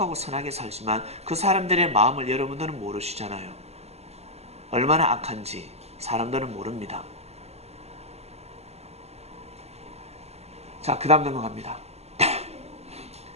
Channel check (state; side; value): late; left; 0.30 ms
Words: 선하게 살지만 그 사람들의 마음을 여러분들은 모르시잖아요. 얼마나 악한지 사람들은 모릅니다. 자, 그 다음 넘어갑니다.